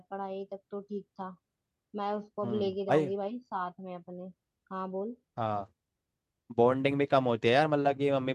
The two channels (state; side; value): identical; both; correlation 1.00